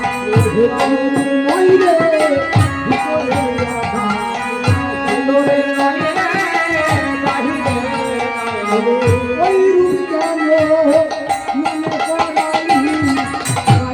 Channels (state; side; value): identical; both; correlation 1.00